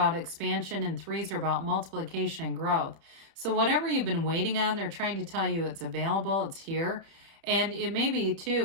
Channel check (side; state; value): left; late; 31 ms